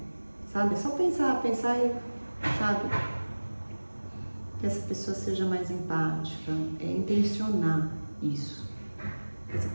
Sabe? É só pensar e, sabe? Que essa pessoa seja mais empática, intencionar isso. Que essa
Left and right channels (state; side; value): inverted; both; correlation -1.00